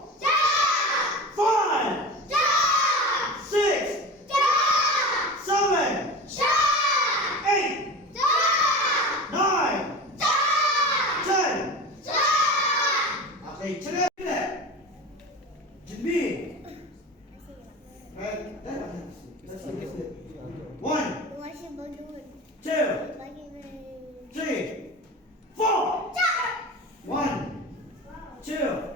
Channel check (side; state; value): both; normal; correlation 0.33